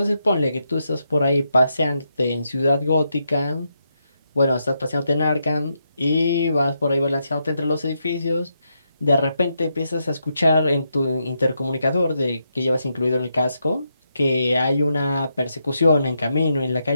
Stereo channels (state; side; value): inverted; both; correlation -0.82